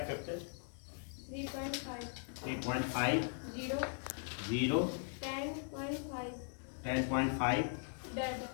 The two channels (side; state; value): right; silent; 51 dB below the other